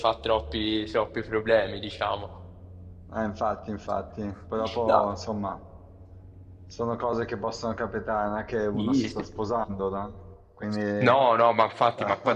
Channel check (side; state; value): both; identical; correlation 1.00